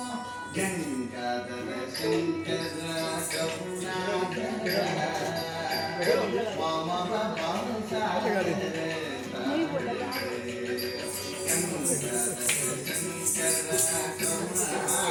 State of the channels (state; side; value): identical; both; correlation 1.00